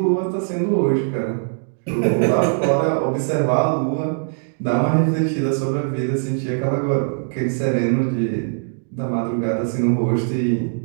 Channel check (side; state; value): left; silent; digital silence